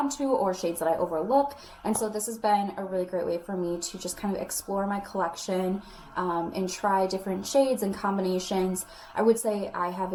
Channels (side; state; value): both; identical; correlation 1.00